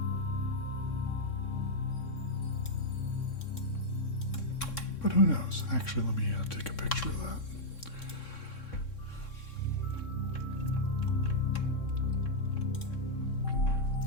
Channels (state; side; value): late; right; 3.7 ms